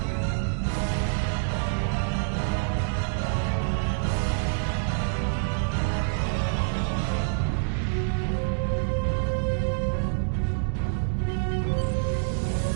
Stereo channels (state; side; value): silent; left; 60 dB below the other